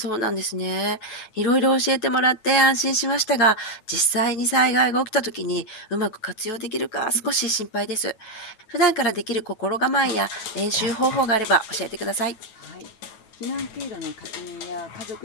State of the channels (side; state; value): right; late; 9.2 ms